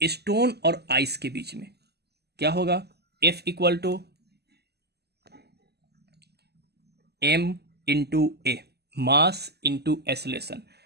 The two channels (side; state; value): left; late; 0.47 ms